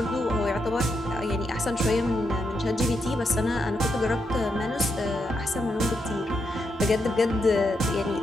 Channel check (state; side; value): normal; both; correlation 0.82